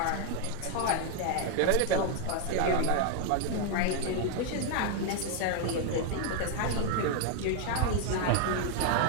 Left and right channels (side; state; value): both; different; correlation 0.00